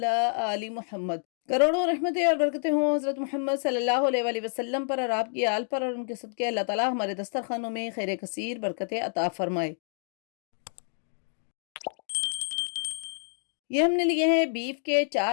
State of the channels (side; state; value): right; silent; digital silence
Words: आलि मुहम्मद। करोड़ों रहमतें और बरकतें हों हज़रत मोहम्मद सल्लल्लाहु अलैहि वसल्लम पर और आपकी आल पर, और उनके सदक़े अल्लाह ताला हमारे दस्तरखानों में खैर कसीर बरकतें अता फरमाए। ये हमने लिए हैं बीफ के